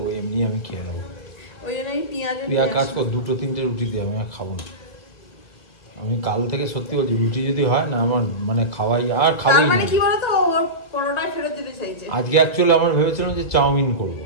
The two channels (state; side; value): late; right; 1.8 ms